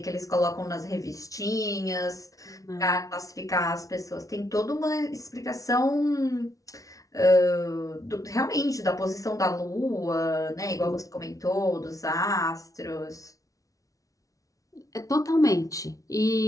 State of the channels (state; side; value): late; right; 0.17 ms